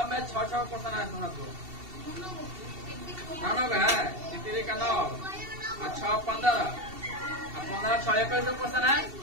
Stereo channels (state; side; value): late; left; 2.7 ms